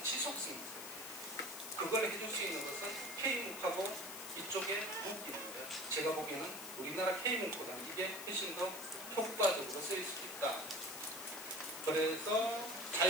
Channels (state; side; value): noise; left; hiss, 10 dB below the sound